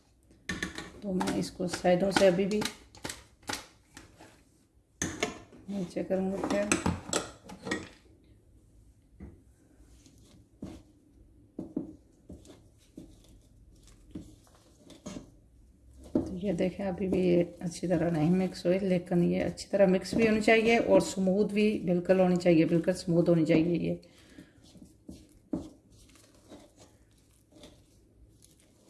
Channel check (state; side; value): identical; both; correlation 1.00